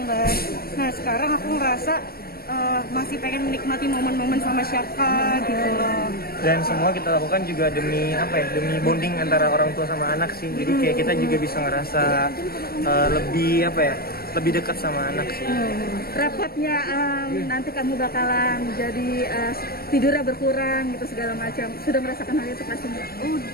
kan. Nah sekarang aku ngerasa masih pengen menikmati momen-momen sama Syaka gitu loh. Dan semua kita lakukan juga demi apa ya, demi bonding antara orang tua sama anak sih. Jadi kayak kita juga bisa ngerasa lebih apa ya, lebih dekat sama anak sih. Rapatnya nanti kamu bakalan jadi tidurnya berkurang gitu segala macam. Sudah merasakan hal itu pastinya?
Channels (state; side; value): late; right; 0.44 ms